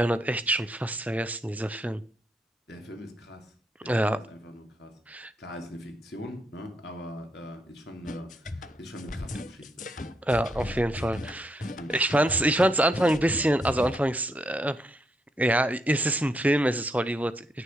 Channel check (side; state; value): both; normal; correlation 0.77